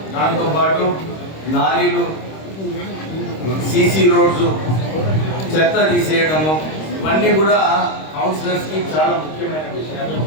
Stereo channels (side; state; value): right; late; 26 ms